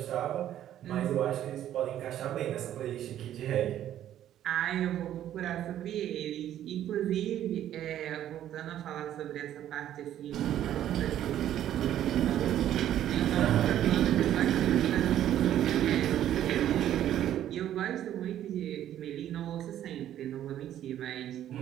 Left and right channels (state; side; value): quieter; left; 11.6 dB